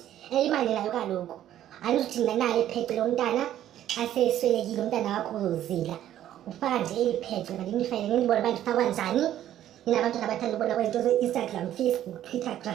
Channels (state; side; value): quieter; left; 11.9 dB